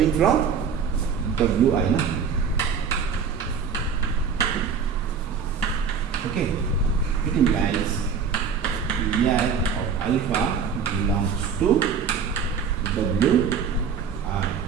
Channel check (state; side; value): quieter; left; 6.4 dB